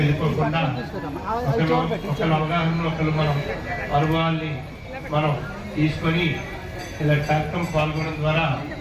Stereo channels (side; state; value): both; identical; correlation 1.00